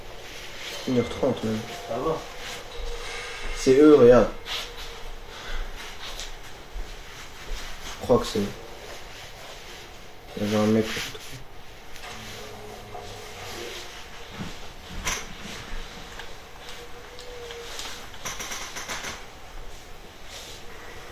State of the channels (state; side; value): identical; both; correlation 1.00